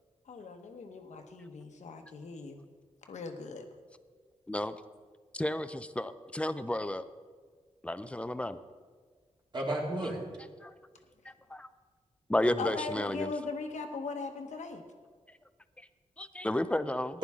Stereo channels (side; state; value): both; normal; correlation 0.84